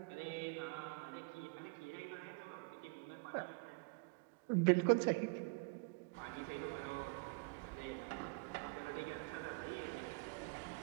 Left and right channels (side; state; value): left; quieter; 30.9 dB